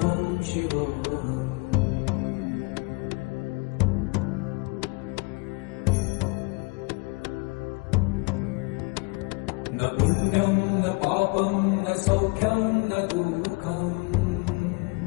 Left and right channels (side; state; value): right; quieter; 29.2 dB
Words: शिवोऽहम् न पुण्यं न पापं न सौख्यं न दुःखम्